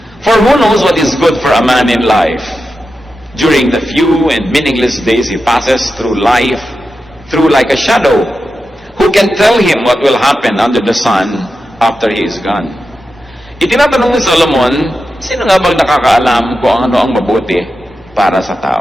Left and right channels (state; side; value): normal; both; correlation 0.90